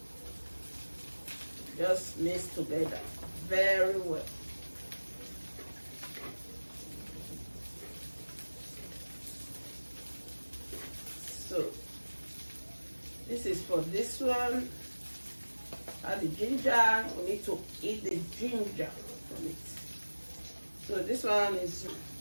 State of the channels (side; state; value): both; inverted; correlation -1.00